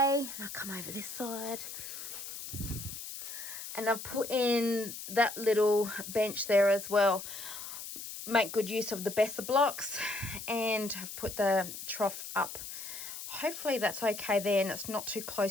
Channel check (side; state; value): left; noise; hiss, 9 dB below the sound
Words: I'll come over this side and I've put in that little bench there as well. Make good use of the Besser blocks and I've put the trough up. Hopefully that's okay there and it's not too